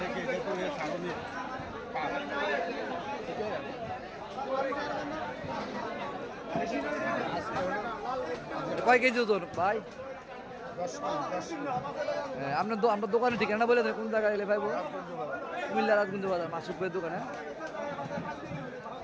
ছাড়নি কয় কেজি ওজন ভাই? আপনার আপনার দোকানের ঠিকানা বলে দেন, কোন জায়গায় এলে পাইবো? কুমিল্লা রাজগঞ্জ বাজার মাসুক ভাইয়ের দোকানে।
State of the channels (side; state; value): both; identical; correlation 1.00